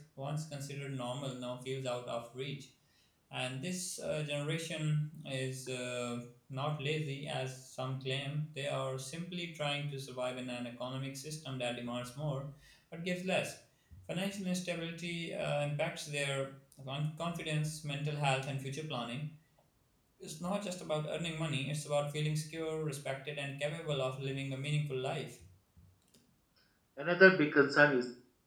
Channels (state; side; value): identical; both; correlation 1.00